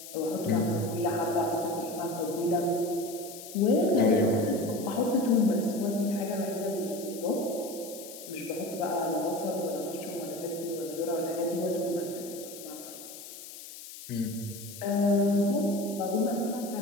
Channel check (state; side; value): noise; left; hiss, 13 dB below the sound